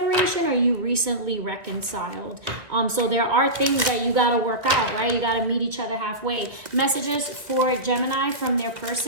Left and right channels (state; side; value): late; left; 2.1 ms